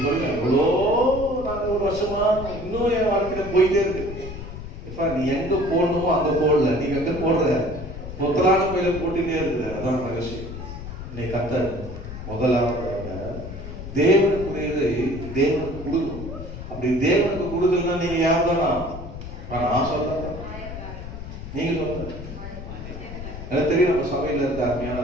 சொல்லுங்க, எவ்வளோ நாங்கள் ஒரு வருஷமா இன்னும் என் வாழ்க்கையில போயிட்டே இருக்கு. இப்ப நீ எங்க போடணுமோ அங்க போடல, நீங்க எங்க போடுற மொத்தலான பையில போட்டுட்டே இருக்குது. அதான் ரகசியம். நீ கத்தர் முதலாவது தேவனுக்குரியதை தேவனுக்கு கொடுக்கணும். அப்படி தேவனுக்கு கொடுக்கலன்னா நீங்க யார் தானா? நான் சொல்றேன், நீங்க சொல்ற. எனக்கு தெரியும், நம்ம சபையில இருக்க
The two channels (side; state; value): left; noise; rumble, 10 dB below the sound